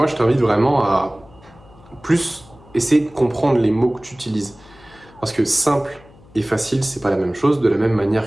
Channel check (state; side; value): noise; left; hum, 25 dB below the sound